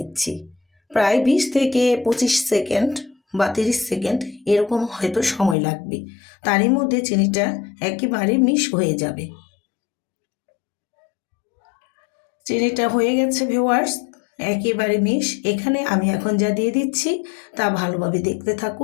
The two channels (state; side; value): drops out; right; at 5.6 s